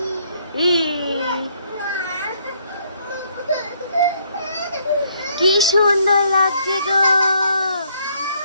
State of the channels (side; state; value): both; inverted; correlation -0.68